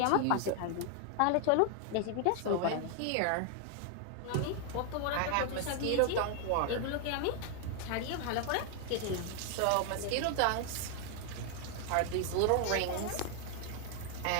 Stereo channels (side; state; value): both; different; correlation 0.00